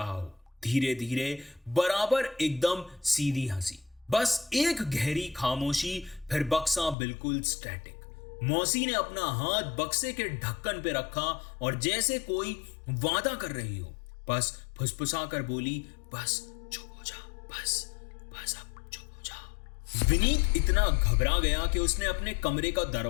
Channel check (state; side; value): drops out; right; at 7.0 s